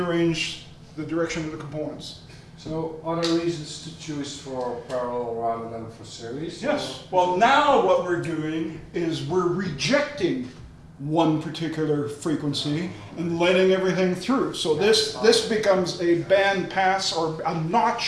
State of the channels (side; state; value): both; identical; correlation 1.00